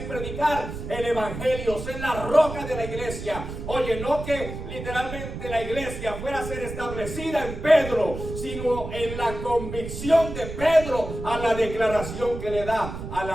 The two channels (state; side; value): noise; right; rumble, 8 dB below the sound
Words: predicar el evangelio, ser la roca de la iglesia. Oye, no que literalmente la iglesia fuera a ser establecida en Pedro, sino en la convicción de Pedro a la declaración que le da a